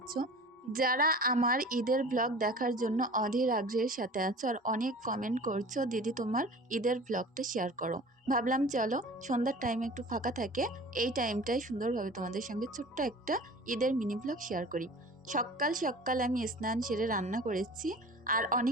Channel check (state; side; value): normal; both; correlation 0.41